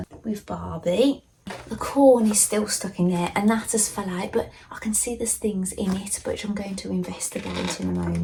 with Barbie. The corn is still stuck in there and that has fell out, but I can see there's things in it which I'm going to investigate in a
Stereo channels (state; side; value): identical; both; correlation 1.00